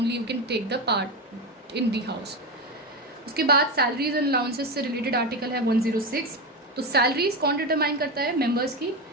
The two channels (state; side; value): normal; both; correlation 0.16